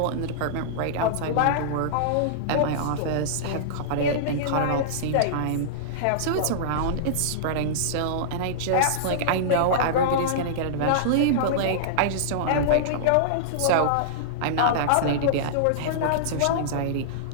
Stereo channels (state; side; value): different; both; correlation -0.03